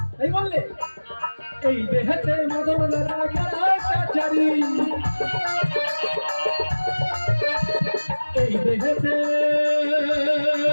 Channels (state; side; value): inverted; both; correlation -1.00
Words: তাই বললে এই দেহেতে মদন রাজাচারী এই দেহেতে